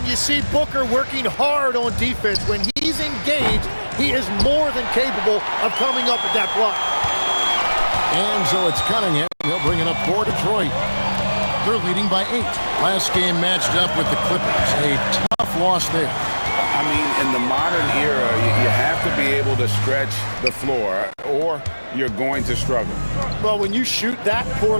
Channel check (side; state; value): both; inverted; correlation -1.00